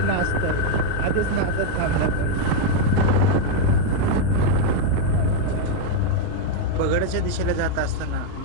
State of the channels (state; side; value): different; both; correlation 0.01